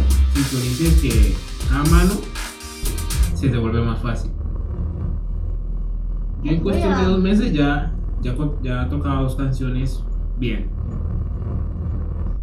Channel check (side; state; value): both; identical; correlation 1.00